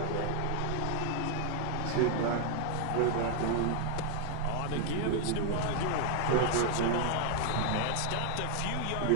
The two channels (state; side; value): different; both; correlation 0.00